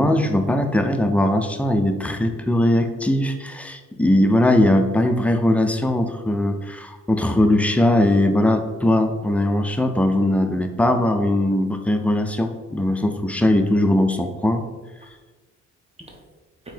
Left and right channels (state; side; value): normal; both; correlation 0.85